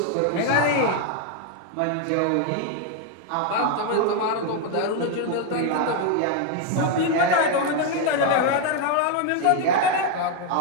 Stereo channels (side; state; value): both; different; correlation 0.01